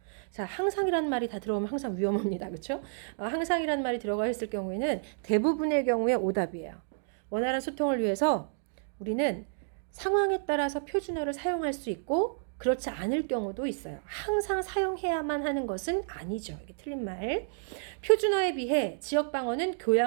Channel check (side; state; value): left; silent; digital silence